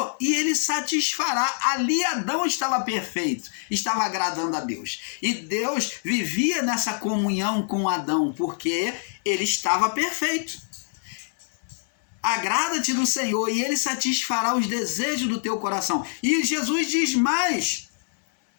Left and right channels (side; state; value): right; silent; 62 dB below the other